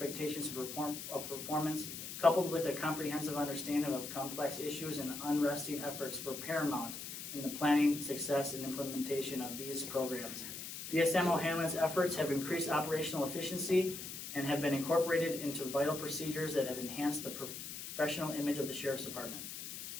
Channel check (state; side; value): noise; left; hiss, 8 dB below the sound